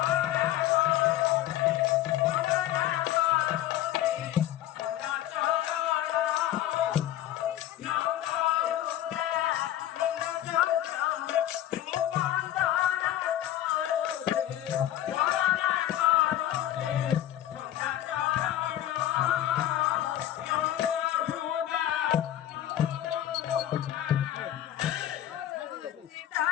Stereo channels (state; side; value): quieter; right; 12.6 dB